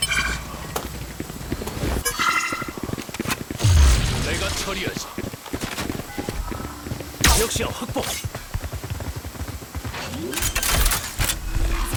내가 처리하지. 역시야 확보.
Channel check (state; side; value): identical; both; correlation 1.00